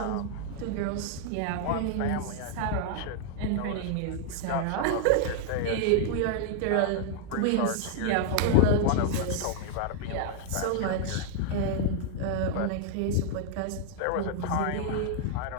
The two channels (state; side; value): different; both; correlation -0.01